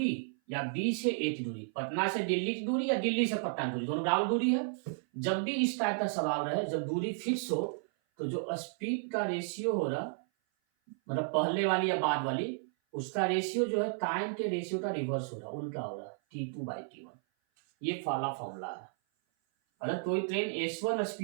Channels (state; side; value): silent; left; 56 dB below the other